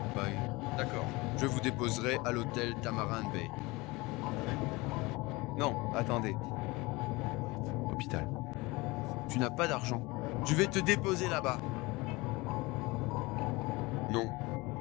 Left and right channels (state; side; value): quieter; right; 23.2 dB